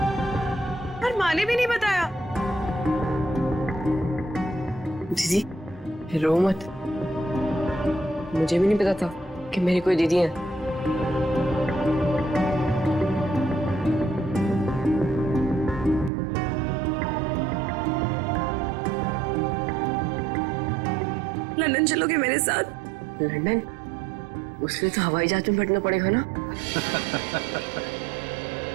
और माँ ने भी नहीं बताया। दीदी रो मत, मुझे भी नहीं पता था कि मेरी कोई दीदी है। लंदन चलोगे मेरे साथ? लंदन? उसके लिए तो हवाई जहाज में बैठना पड़ेगा ना?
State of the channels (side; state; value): left; drops out; at 16.1 s